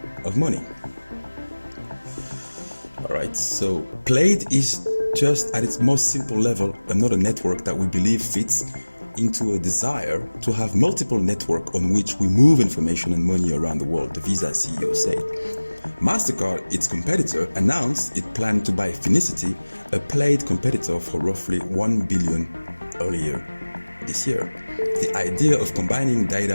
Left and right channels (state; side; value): inverted; both; correlation -1.00